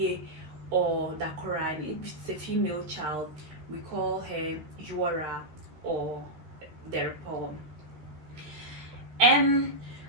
or Dakora. And if it's a female child, we call her Yuara or Derpo. And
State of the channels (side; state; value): left; late; 13 ms